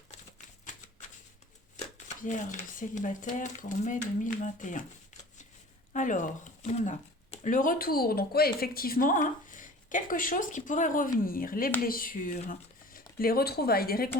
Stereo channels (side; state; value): both; normal; correlation 0.43